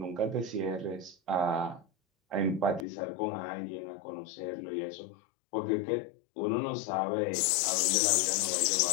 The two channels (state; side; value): drops out; right; at 2.9 s